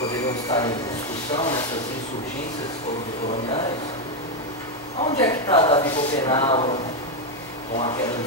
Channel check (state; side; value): normal; both; correlation 0.05